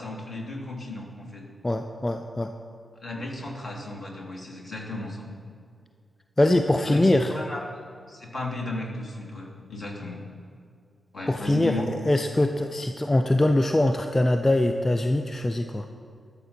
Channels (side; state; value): both; normal; correlation 0.95